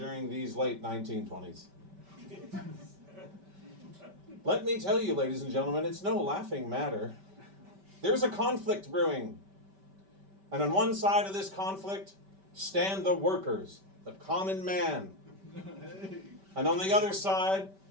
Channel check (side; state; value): left; late; 5.1 ms